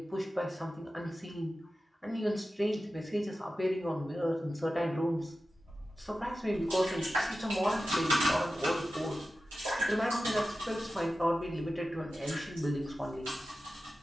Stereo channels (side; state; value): both; normal; correlation 0.94